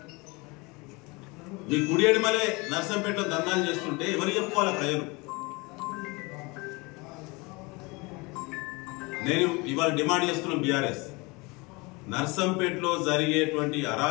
మీ కుడి ఎడిమలే నర్సంపేటలో దందాలు చేస్తుంటే ఎవరు చెప్పుకోవాలి ప్రజలు? నేను ఇవాళ డిమాండ్ చేస్తున్న బీఆర్ఎస్, నర్సంపేటలో జరిగేటువంటి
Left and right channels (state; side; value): quieter; right; 26.0 dB